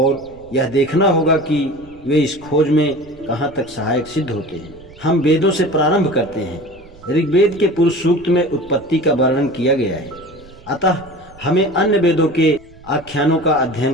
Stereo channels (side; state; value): right; noise; rumble, 23 dB below the sound